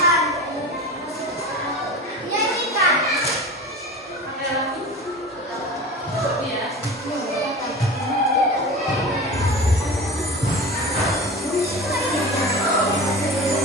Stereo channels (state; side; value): normal; both; correlation 0.33